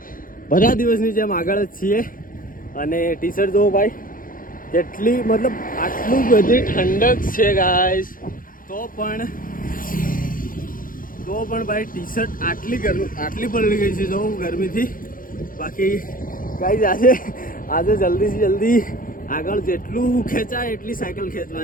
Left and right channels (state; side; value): late; right; 0.40 ms